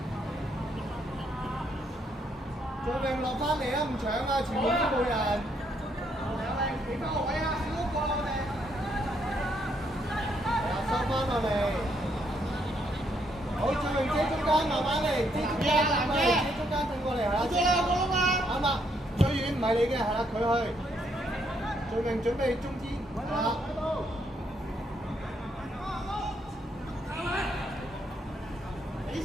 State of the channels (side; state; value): both; normal; correlation 0.73